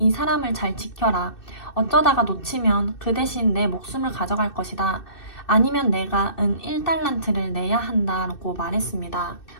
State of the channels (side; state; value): right; late; 2.6 ms